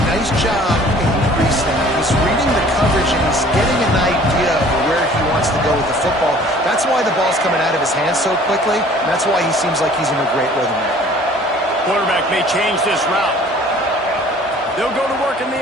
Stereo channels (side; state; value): both; normal; correlation 0.52